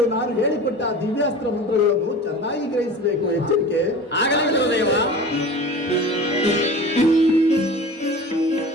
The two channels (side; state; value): both; normal; correlation 0.37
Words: ನಾನು ಹೇಳಿಕೊಟ್ಟ ದಿವ್ಯಾಸ್ತ್ರ ಮಂತ್ರಗಳನ್ನು ಚೆನ್ನಾಗಿ ಗ್ರಹಿಸಬೇಕು. ಎಚ್ಚರಿಕೆ. ಆಗಲೇ ಗುರುದೇವ.